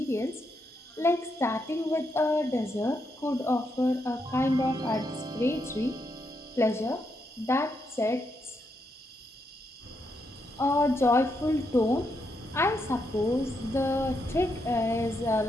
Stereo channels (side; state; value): both; normal; correlation 0.80